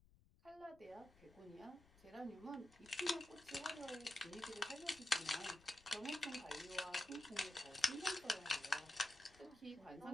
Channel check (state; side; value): noise; left; rumble, 27 dB below the sound